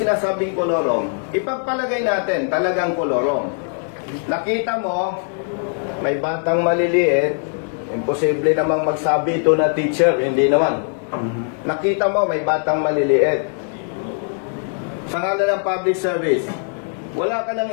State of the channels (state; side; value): silent; right; 57 dB below the other